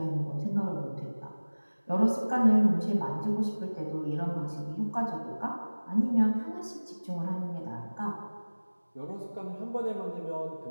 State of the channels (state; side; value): inverted; both; correlation -1.00